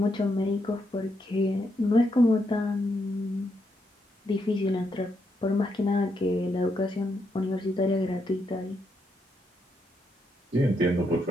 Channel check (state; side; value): normal; both; correlation 0.79